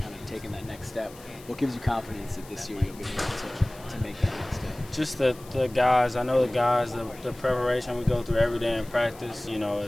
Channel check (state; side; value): noise; left; hiss, 21 dB below the sound